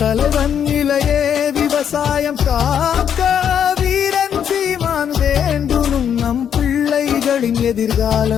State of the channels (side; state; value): right; quieter; 8.6 dB